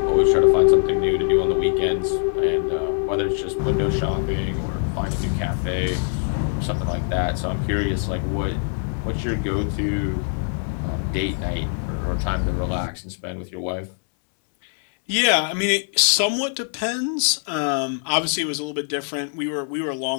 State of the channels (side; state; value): right; silent; digital silence